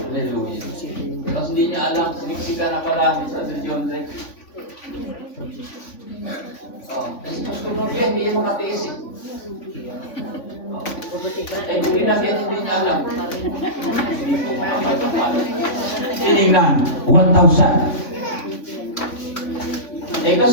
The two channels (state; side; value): late; right; 3.5 ms